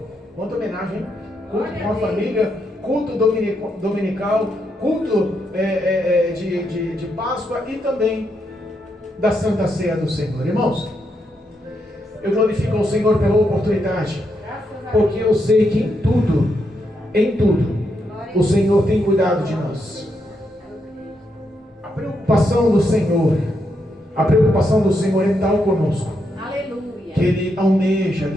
Quanta homenagem, hein? Culto com a família, culto dominical, culto de Páscoa e também da Santa Ceia do Senhor. Irmãos, eu glorifico ao Senhor pela oportunidade, porque eu sei que em tudo, o Senhor tem cuidado de nós. A preocupação do Senhor é tal conosco, Aleluia, que Ele almeja e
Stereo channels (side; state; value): both; normal; correlation 0.80